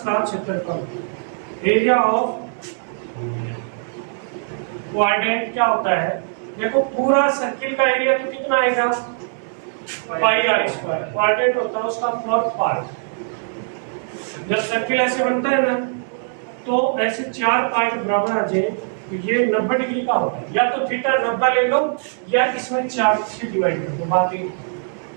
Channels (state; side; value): silent; left; digital silence